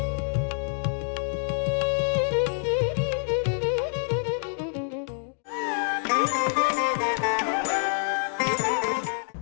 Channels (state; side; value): silent; right; 60 dB below the other